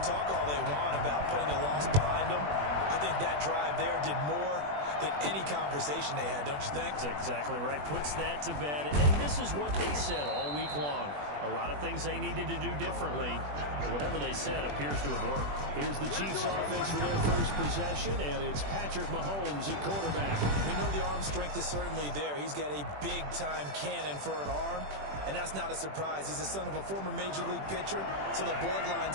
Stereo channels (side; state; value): left; late; 21 ms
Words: talk all they want about putting a loss behind them. I think that drive there did more than any conversation they had, don't you think? That's exactly right. Puts that to bed. And this is what they said all week long. A lot of things they needed to do differently. Whatever they said appears to have worked. Here's the Chiefs offense for their 1st possession, and it's Patrick Mahomes at quarterback. We know the arm strength is certainly there. He's got a big-time cannon for an arm, and that's not a surprise. He's the son of a former Major League pitcher, so the